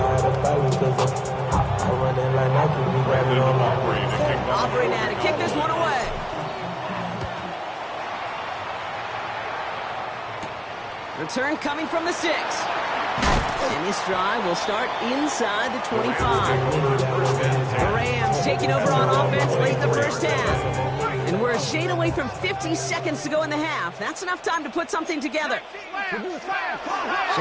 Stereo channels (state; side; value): identical; both; correlation 1.00